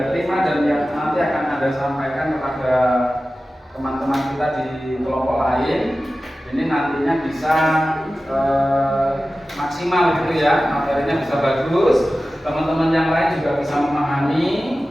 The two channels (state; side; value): normal; both; correlation 0.95